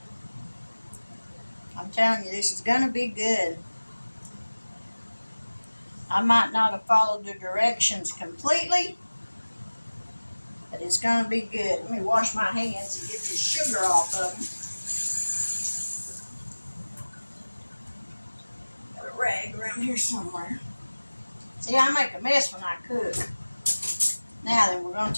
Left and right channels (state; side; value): inverted; both; correlation -1.00